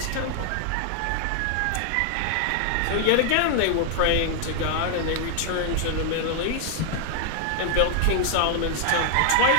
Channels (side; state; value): both; different; correlation 0.00